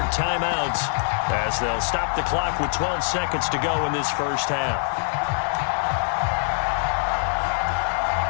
timeouts as they'll stop the clock with 12 seconds to go in this first half.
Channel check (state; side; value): silent; right; digital silence